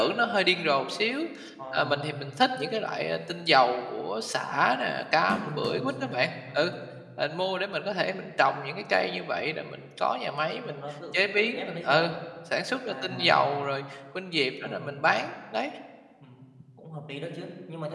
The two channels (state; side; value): identical; both; correlation 1.00